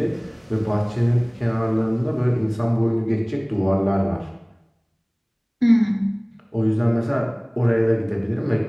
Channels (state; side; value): identical; both; correlation 1.00